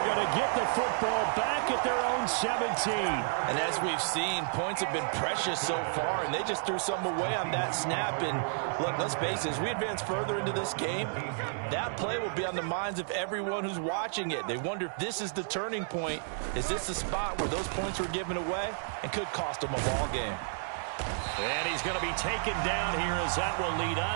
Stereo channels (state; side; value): silent; left; 57 dB below the other